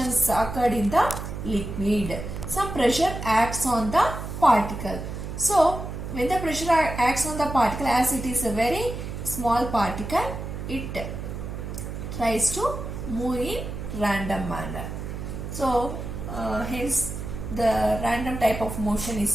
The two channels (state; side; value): noise; right; hum, 7 dB below the sound